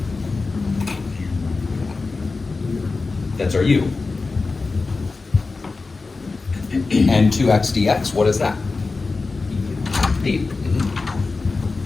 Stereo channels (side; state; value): right; quieter; 3.9 dB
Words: That's our u. And 2x dx, what is that? D.